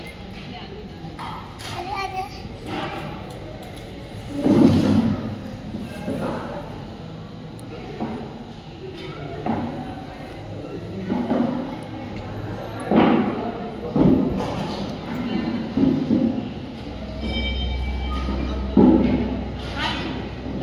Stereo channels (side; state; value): both; identical; correlation 1.00